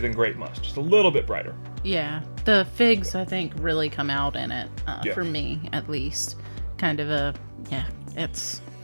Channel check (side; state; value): both; inverted; correlation -1.00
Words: grape must. Just a little bit brighter. Yeah, the figs I think really come out in it Yeah. for me at least. Kind of a